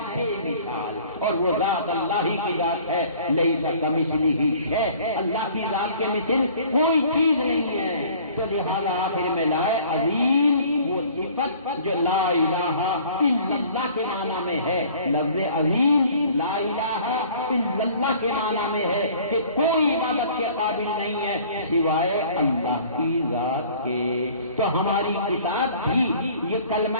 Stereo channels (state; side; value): inverted; both; correlation -0.51